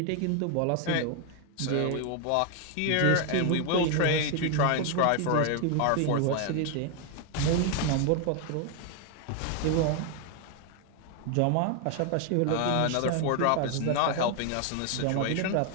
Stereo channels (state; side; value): different; both; correlation 0.00